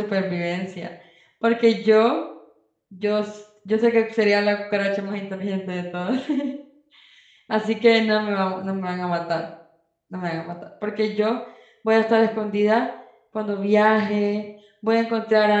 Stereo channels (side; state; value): both; identical; correlation 1.00